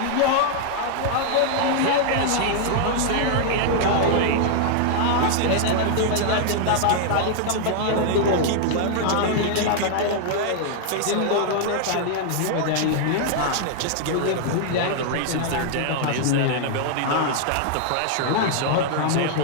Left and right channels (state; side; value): different; both; correlation -0.01